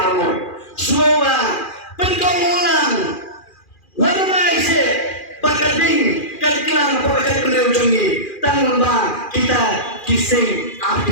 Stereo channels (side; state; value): right; late; 2.4 ms